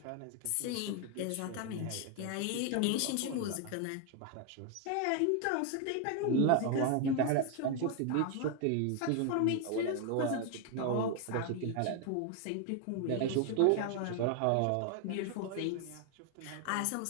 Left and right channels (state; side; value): different; both; correlation 0.01